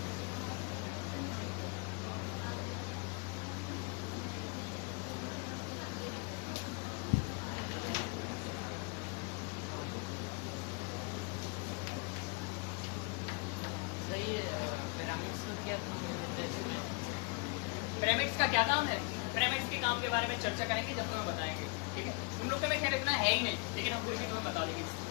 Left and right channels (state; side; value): quieter; right; 32.6 dB